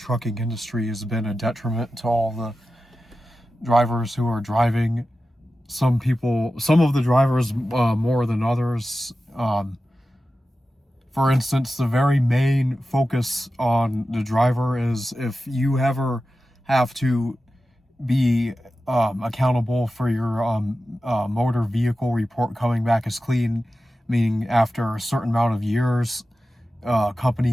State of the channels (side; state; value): both; normal; correlation 0.93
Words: industry has been a detriment to all the drivers who are driving. Some of the drivers more than others. For instance, the very main focus on the driver is if you ever have to be accountable for your motor vehicle report coming back as clean, meaning after a certain amount of years,